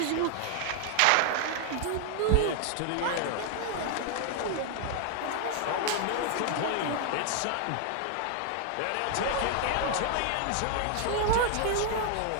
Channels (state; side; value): different; both; correlation 0.00